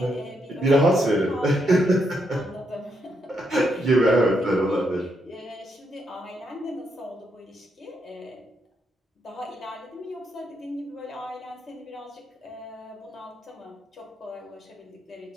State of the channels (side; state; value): both; normal; correlation 0.79